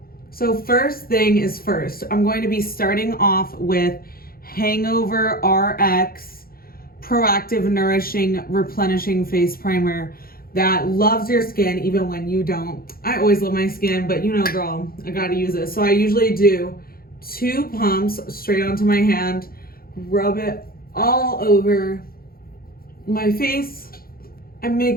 So first thing is first, I'm going to be starting off with Hangover RX Proactive Nourishing Replenishing Face Primer that loves your skin even when you don't. I always love my skin, but you know, girl, I gotta use it. So I usually do 2 pumps straight onto my hand, rub it all over my face, and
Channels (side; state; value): right; late; 0.43 ms